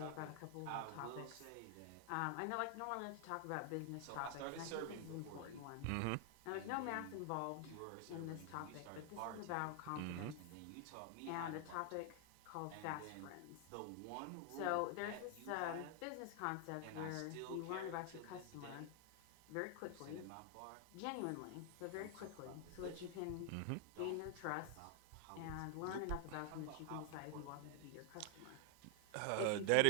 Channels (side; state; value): both; different; correlation 0.00